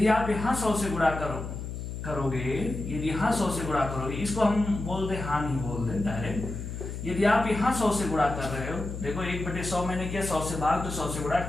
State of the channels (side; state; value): left; noise; hum, 7 dB below the sound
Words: आप यहाँ 100 से गुणा करोगे, यदि यहाँ 100 से गुणा करोगे, इसको हम बोल दे हानि, बोल दे डायरेक्ट। यदि आप यहाँ 100 से गुणा कर रहे हो, देखो 1/100 मैंने किया, 100 से भाग तो 100 से गुणा